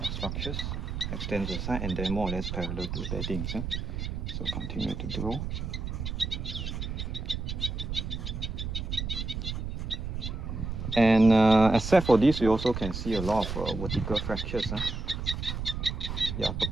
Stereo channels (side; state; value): right; noise; rumble, 4 dB below the sound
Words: structures extend to the side and then more or less parallel to the beddings. So continue to draw. And except for this, we also can see a lot of vertical fractures. Yeah,